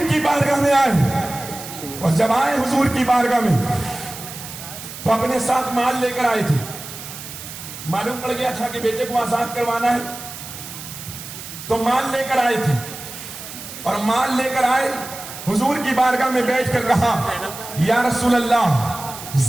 کی بارگاہ میں آئے، اور جب آئے حضور کی بارگاہ میں تو اپنے ساتھ مال لے کر آئے تھے۔ معلوم پڑ گیا تھا کہ بیٹے کو آزاد کروانا ہے تو مال لے کر آئے تھے، اور مال لے کر آئے حضور کی بارگاہ میں بیٹھ کر کہا یا رسول اللہ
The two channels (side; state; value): right; noise; hiss, 12 dB below the sound